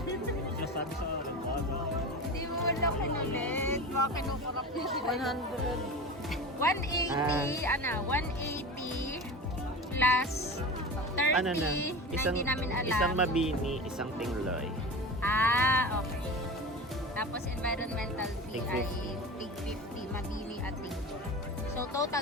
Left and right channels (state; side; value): normal; both; correlation 0.30